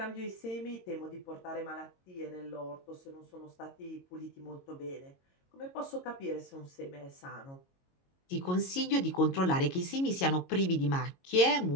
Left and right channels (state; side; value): late; right; 22 ms